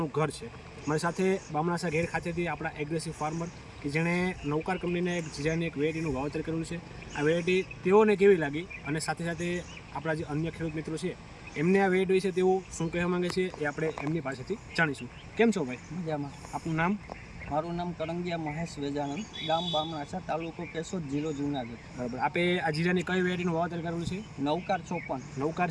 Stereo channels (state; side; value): identical; both; correlation 1.00